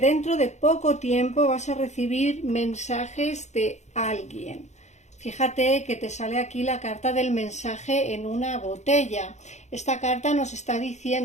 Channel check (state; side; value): late; right; 0.33 ms